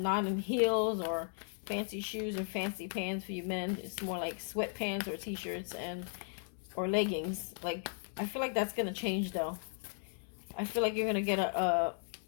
in heels or fancy shoes or fancy pants for you men. It's more like sweatpants or t-shirts and or leggings. Like I feel like that's gonna change though. I feel like you're gonna get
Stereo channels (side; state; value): right; silent; 54 dB below the other